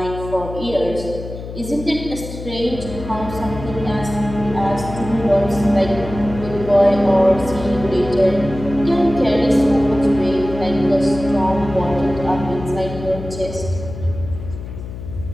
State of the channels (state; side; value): noise; left; hum, 10 dB below the sound